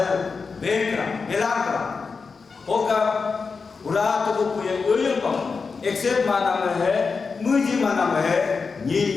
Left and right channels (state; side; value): quieter; right; 4.9 dB